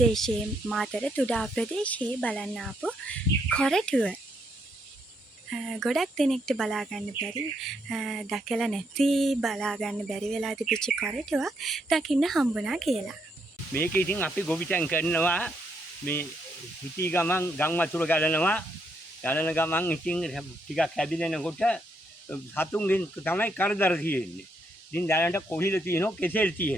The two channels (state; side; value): normal; both; correlation 0.76